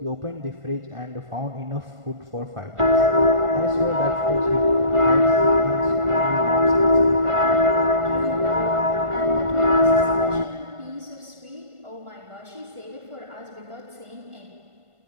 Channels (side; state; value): left; late; 1.5 ms